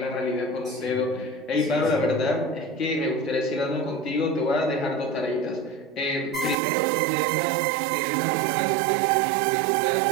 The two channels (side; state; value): left; drops out; at 6.6 s